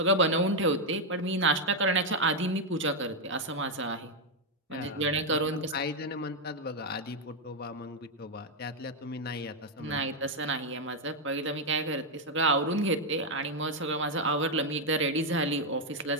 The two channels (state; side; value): normal; both; correlation 0.02